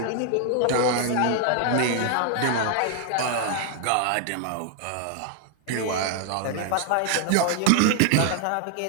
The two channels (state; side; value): different; both; correlation 0.00